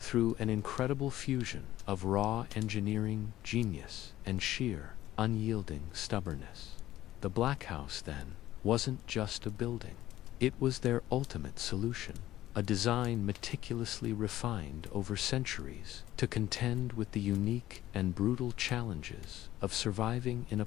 an incredible fusion of raw engineering genius and sheer, unyielding stubbornness. The Black House, then, wasn't just a building. It was their ultimate solution, a design meticulously refined over centuries to contend with the unique and brutal challenges of surviving in a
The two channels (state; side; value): quieter; right; 14.3 dB